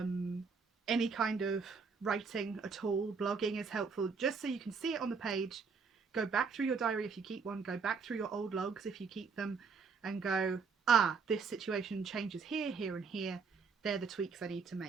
kind of writing at all, blogging is helpful, just so you can see it on the page. Go back through your diary if you keep one, go back through your old logs if you keep them, and go, ah, this situation changes here, here and here. They're the tweaks I need to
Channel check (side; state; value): left; quieter; 5.2 dB